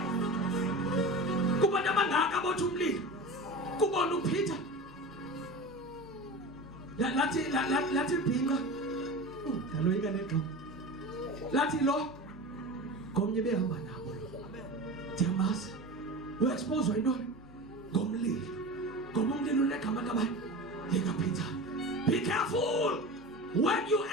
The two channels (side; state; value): right; noise; rumble, 29 dB below the sound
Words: Kubantu abangaka abotha umlilo. Kubona uPeter. Lathi bhinqa. Daloyika negqo. Lathi lo komnye behamba nabo lo. Ndiyamazi. Uexpose yintoni? Ngomlilo. Ngoba umlilo unegama kabani? LikaPeter. Be careful when you